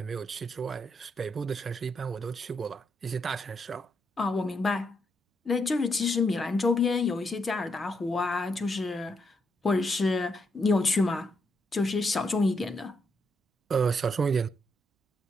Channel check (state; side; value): normal; both; correlation 0.79